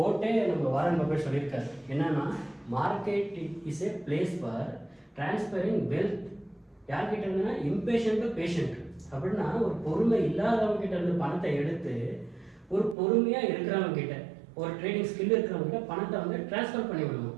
நம்ம வாரன் பஃபெட் சொல்லியிருக்காரு. என்னன்னா, market is a place for transferring wealth. யார்கிட்ட இருந்துன்னா இம்பேஷண்ட் டு பேஷண்ட். அப்படின்னா ஒரு பொறுமை இல்லாதவங்க கிட்ட இருந்து பணத்தை எடுத்து ஒரு பொறுமையாக இருக்கிறவங்க கிட்ட, ஒரு ட்ரேடிங் ஸ்கில் இருக்கிறவங்க கிட்ட பணத்தை வந்து டிரான்ஸ்ஃபர் பண்ணி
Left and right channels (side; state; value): left; drops out; at 13.0 s